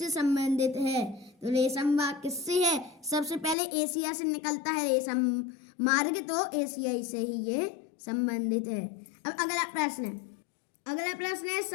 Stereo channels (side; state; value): right; drops out; at 3.6 s